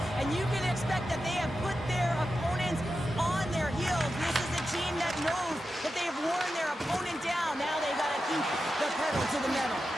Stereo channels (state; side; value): normal; both; correlation 0.90